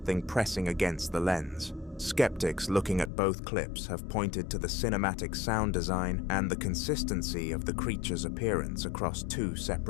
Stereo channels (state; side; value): drops out; right; at 3.1 s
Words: pressing against the lens. Skeptics looking at both clips have pointed to the cinematic sound design and the consistency of the creature's appearance across 2